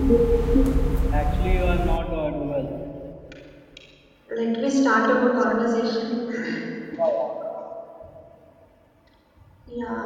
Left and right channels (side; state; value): both; identical; correlation 1.00